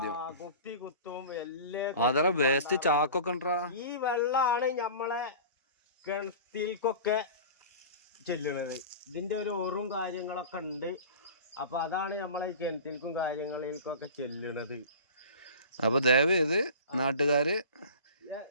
കുപ്പി കുത്തും. എല്ലാം അതറ വേസ്റ്റ് ചാക്കൊക്കെ ഉണ്ടാ. ഈ വെള്ളാണ് നമ്മളെ കിണറ്റിൽക്കൊക്കെ ചെല്ലണത്. ഇതിന്റെ ഒരു ഓറും കാര്യങ്ങളൊക്കെ ഉണ്ട്. അപ്പൊ അതാണ് നമ്മളെ കിണറ്റിൽക്കും കാര്യങ്ങളിൽക്കൊക്കെ ചെല്ലണത്. അപ്പൊ ദയവ് ചെയ്ത് നാട്ടുകാര്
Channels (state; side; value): inverted; both; correlation -0.37